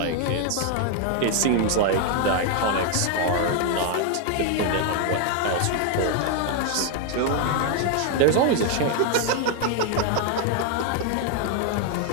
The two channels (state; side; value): different; both; correlation 0.01